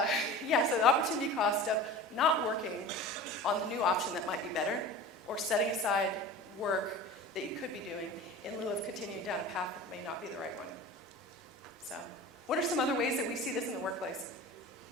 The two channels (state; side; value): normal; both; correlation 0.36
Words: So the opportunity cost of not working on the new option that might be better, or setting aside work that you could be doing in lieu of continuing down a path that may not be the right one. So, what are some other ways that we see this in the workplace?